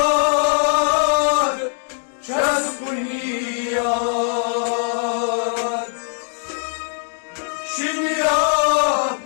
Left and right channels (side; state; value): right; silent; 64 dB below the other